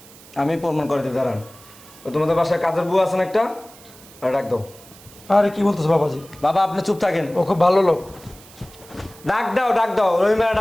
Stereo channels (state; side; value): noise; right; hiss, 22 dB below the sound